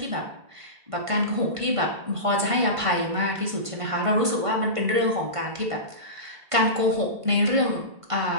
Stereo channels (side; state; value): left; late; 1.5 ms